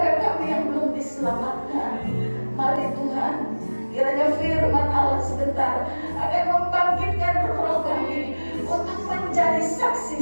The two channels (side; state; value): both; inverted; correlation -1.00